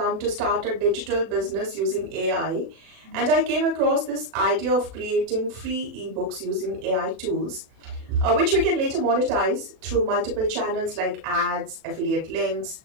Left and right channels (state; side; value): late; left; 36 ms